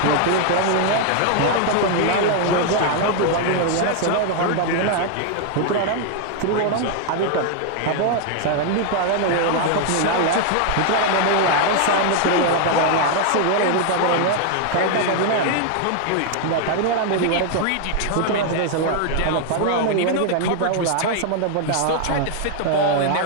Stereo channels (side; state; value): both; different; correlation 0.00